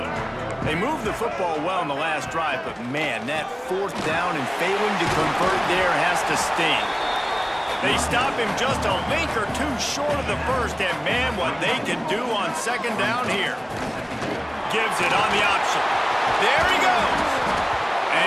They moved the football well in the last drive, but man, that 4th down and failing to convert there has to sting. They stop him just a link or two short of the first, and man, what they can do on second down here. Gives it on the option. There he goes.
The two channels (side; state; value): both; identical; correlation 1.00